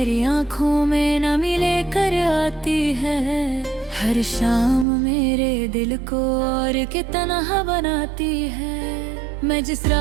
आँखों में नमी लेकर आती है, हर शाम मेरे दिल को और के तन्हा बनाती है। मैं जिस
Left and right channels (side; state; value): left; drops out; at 4.9 s